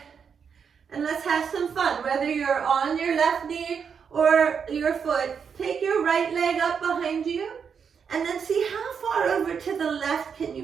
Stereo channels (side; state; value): left; quieter; 6.7 dB